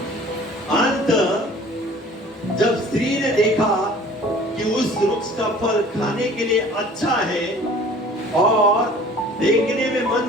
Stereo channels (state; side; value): normal; both; correlation 0.48